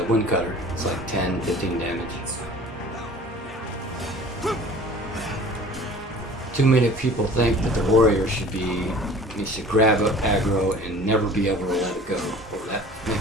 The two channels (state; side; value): normal; both; correlation 0.45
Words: wind cutter. It's like 10, 15 damage. Too many people think that the warrior should grab up aggro and never be able to let it go. Well, that